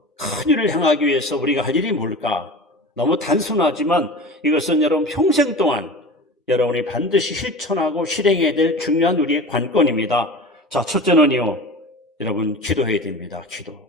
큰 일을 행하기 위해서 우리가 할 일이 뭘까? 너무 단순하지만 이것은 여러분 평생 동안 여러분이 반드시 실천하고 실행해야 될 중요한 우리의 관건입니다. 자, 첫째는요, 여러분 기도해야 됩니다. 기도.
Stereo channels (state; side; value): normal; both; correlation 0.34